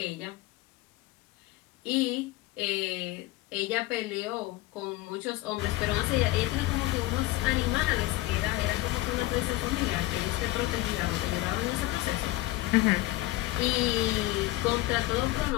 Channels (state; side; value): quieter; right; 18.4 dB